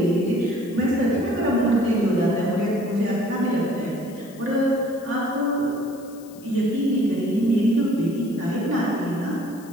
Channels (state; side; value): noise; left; hiss, 23 dB below the sound